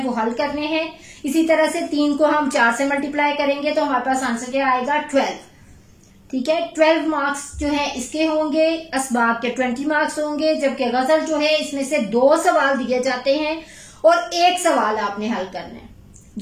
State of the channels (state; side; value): identical; both; correlation 1.00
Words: वो हल करने हैं। इसी तरह से 3 को हम 4 से मल्टीप्लाई करेंगे तो हमारे पास आंसर क्या आएगा, 12। ठीक है। 12 मार्क्स जो है इसके होंगे, असबाब के 20 मार्क्स होंगे, जबकि गजल जो है इसमें से 2 सवाल दिए जाते हैं और 1 सवाल आपने हल करना है